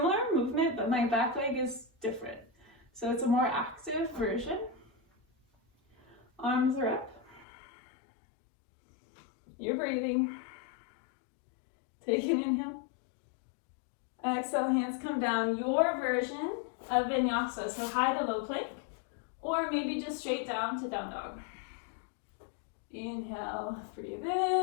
movement, but my back leg is different. So it's a more active version. Arms are up. You're breathing. Take an inhale. Exhale, hands come down. Your version of vinyasa, so high to low plank, or maybe just straight down to down dog. Inhale, breathe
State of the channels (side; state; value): right; drops out; at 7.5 s